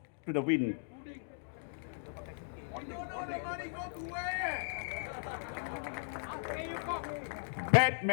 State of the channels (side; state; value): right; silent; digital silence